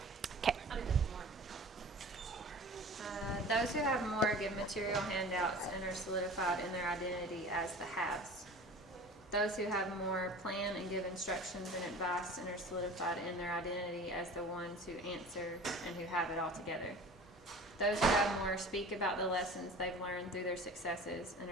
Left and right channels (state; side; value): normal; both; correlation 0.40